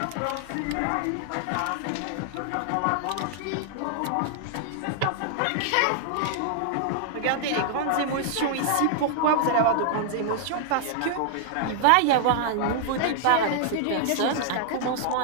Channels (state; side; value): different; both; correlation -0.01